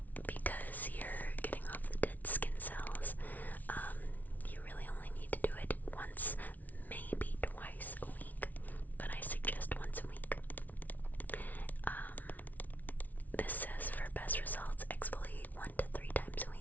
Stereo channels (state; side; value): late; right; 0.078 ms